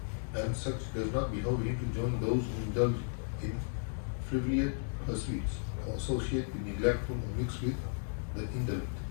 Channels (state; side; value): silent; right; digital silence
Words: and such does not behove him to join those who indulge in frivolous pursuits or associate with neglectful or mix with the indolent.